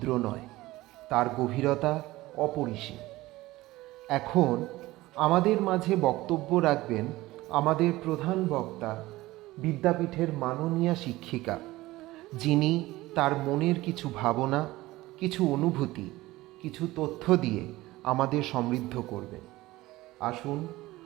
নয়, তার গভীরতা অপরিসীম। এখন আমাদের মাঝে বক্তব্য রাখবেন আমাদের প্রধান বক্তা, বিদ্যাপীঠের মাননীয়া শিক্ষিকা, যিনি তার মনের কিছু ভাবনা, কিছু অনুভূতি, কিছু তথ্য দিয়ে আমাদের সমৃদ্ধ করবেন। আসুন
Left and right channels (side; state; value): left; quieter; 18.3 dB